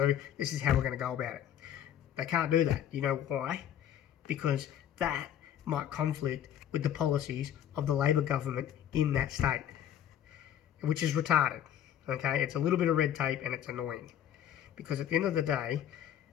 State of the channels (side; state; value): right; quieter; 10.4 dB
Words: do, this is how we're going to go about it. They can't do that. You know why? Because that might conflict with the policies of the Labor government in that state, which is retarded. Okay, it's a little bit of red tape and it's annoying. Because at the end of the day,